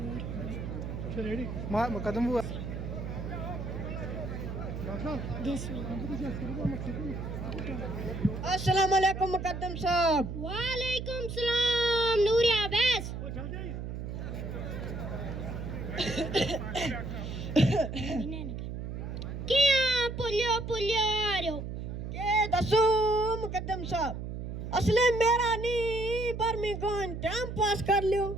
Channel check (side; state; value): right; noise; hum, 6 dB below the sound